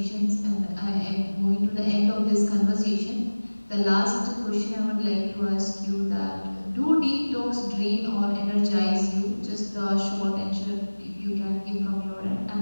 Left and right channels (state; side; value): inverted; both; correlation -1.00